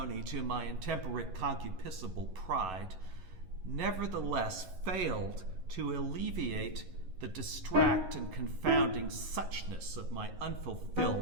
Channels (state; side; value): late; left; 11 ms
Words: to my intemperate concupiscible pride, nevertheless failed to alleviate the distract and confounding suchness of my